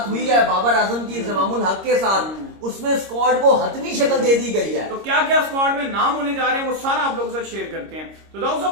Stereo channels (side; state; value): left; late; 26 ms